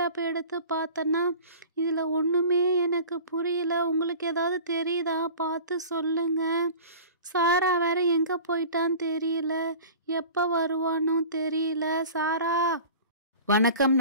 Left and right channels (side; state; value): both; inverted; correlation -0.40